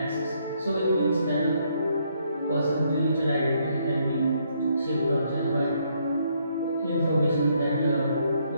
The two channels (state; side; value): inverted; both; correlation -0.72